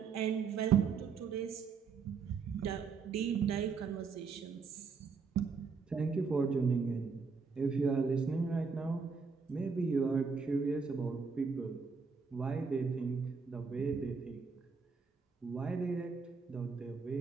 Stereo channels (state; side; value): quieter; left; 5.3 dB